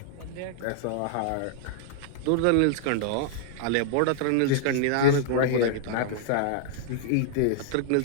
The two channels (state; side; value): different; both; correlation -0.01